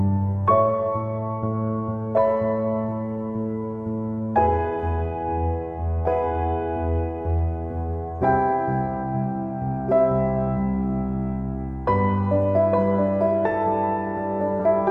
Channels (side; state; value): both; identical; correlation 1.00